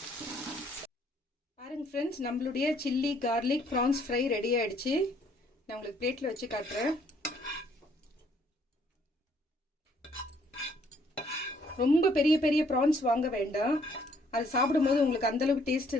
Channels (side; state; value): both; normal; correlation 0.65